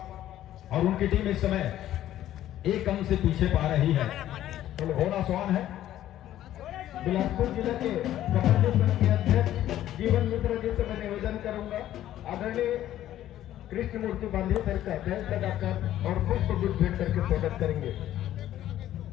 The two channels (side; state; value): right; quieter; 12.7 dB